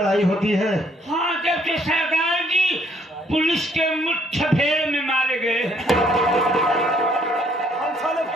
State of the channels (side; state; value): both; normal; correlation 0.66